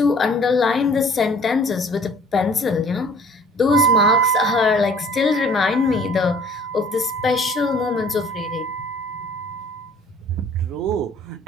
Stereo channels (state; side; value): normal; both; correlation 0.53